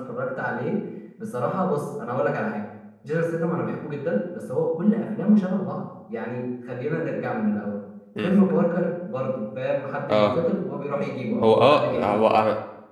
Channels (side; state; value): both; identical; correlation 1.00